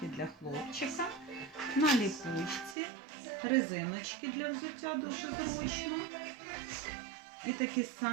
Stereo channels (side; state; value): left; drops out; at 2.8 s